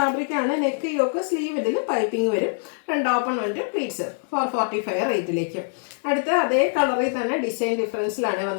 ആണ്. നെക്ക് യോക്ക് സ്ലീവ് ഇതിൽ പൈപ്പിംഗ് വരും. ഫ്രണ്ട് ഓപ്പൺ വന്നിട്ട് പ്ലീറ്റ്സ് 445 റേറ്റിലേക്ക്. അടുത്ത അതേ കളറിൽ തന്നെ ഡിസൈൻ ഡിഫറൻസിലാണ്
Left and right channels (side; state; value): right; silent; digital silence